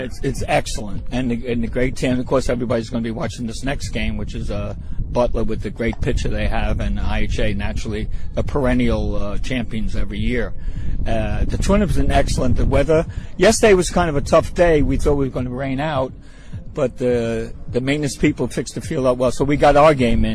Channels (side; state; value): both; identical; correlation 1.00